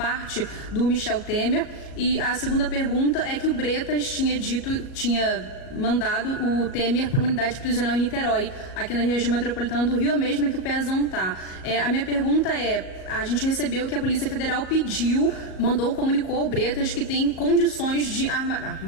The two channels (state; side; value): late; right; 37 ms